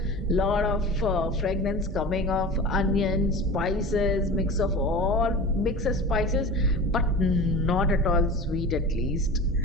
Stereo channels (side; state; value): both; normal; correlation 0.34